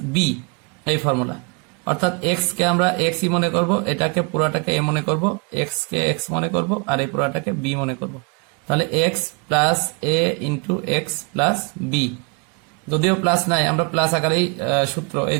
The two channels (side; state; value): left; quieter; 33.1 dB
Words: B, এই ফর্মুলা। অর্থাৎ এক্স কে আমরা এক্স ই মনে করব, এটাকে পুরাটাকে এ মনে করব, এক্স কে এক্স মনে করব, আর এই পুরাটাকে বি মনে করব। তাহলে x plus A into X plus B, যদিও প্লাস নাই আমরা প্লাস আকারেই সূত্র, এই